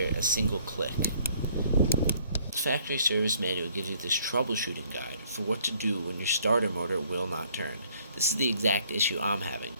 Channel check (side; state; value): both; inverted; correlation -0.62